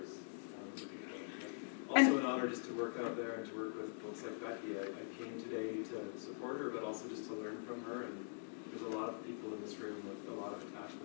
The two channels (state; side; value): silent; right; digital silence